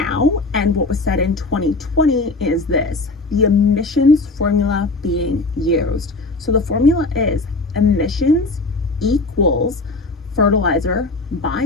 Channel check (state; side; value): quieter; right; 3.3 dB